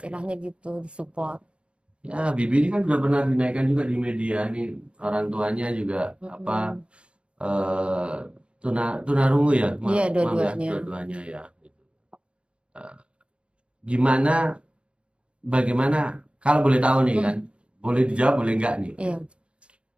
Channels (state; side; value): late; left; 0.058 ms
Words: gitu, disupport. Ya, Bibi ini kan sudah pernah dinaikkan juga di media nih, orang tuanya juga apa tunarungu ya, Iya, maaf ya, dua-duanya. dua-duanya ya. Gitu. Eh, Gimana, bagaimana, kalau boleh tahu nih kan, boleh dijawab, boleh enggak nih. Iya.